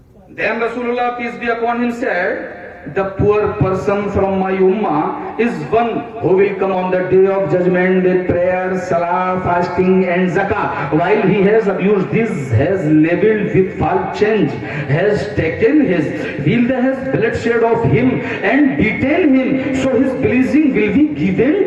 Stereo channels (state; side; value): identical; both; correlation 1.00